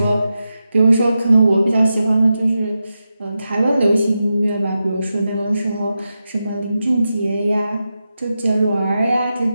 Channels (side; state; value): both; inverted; correlation -0.90